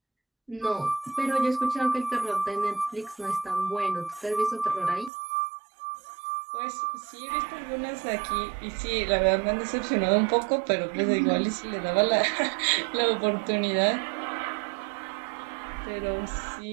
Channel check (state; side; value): drops out; left; at 5.1 s